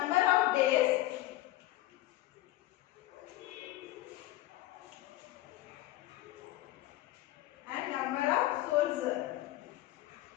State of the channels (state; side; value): quieter; right; 16.3 dB